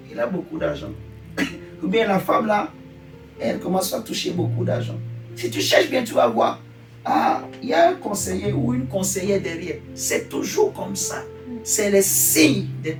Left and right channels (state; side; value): identical; both; correlation 1.00